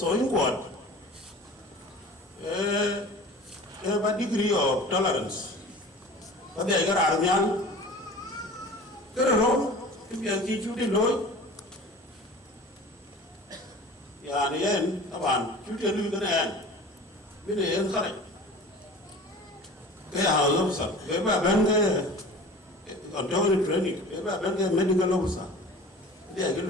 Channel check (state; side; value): normal; both; correlation 0.40